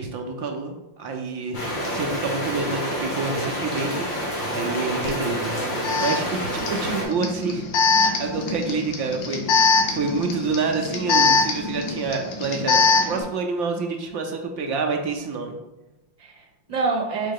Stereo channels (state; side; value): late; right; 5.7 ms